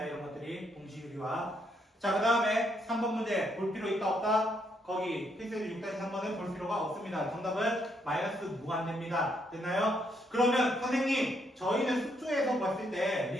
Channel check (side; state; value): both; normal; correlation 0.74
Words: 이런 것들이 동시 유리화. 자, 그 다음에 3번 문제 볼 필요 있다 없다? 거기 필수의 6-3번은 볼 필요가 없습니다. 정답은 마이너스 무한대입니다. 됐나요? 그러면 선생님, 저희는 숙주에서 봤을 때